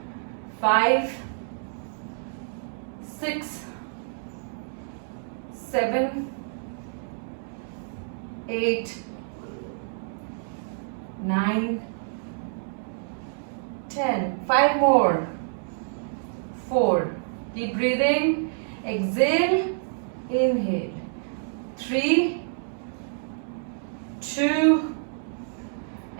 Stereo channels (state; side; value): silent; left; digital silence